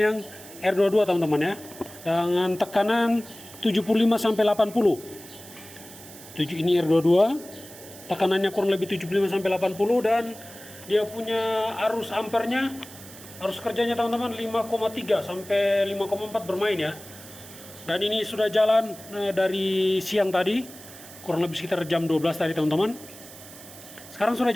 yang R22 teman-teman ya, dengan tekanan 75 sampai 80. Ini R22, tekanannya kurang lebih 75 sampai 80 dan dia punya arus ampernya, arus kerjanya teman-teman 5,3 sampai 5,4 bermain ya. Dan ini sudah jalan dari siang tadi, kurang lebih sekitar jam 12 tadi teman-teman. Sekarang sudah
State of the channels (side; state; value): right; noise; hiss, 17 dB below the sound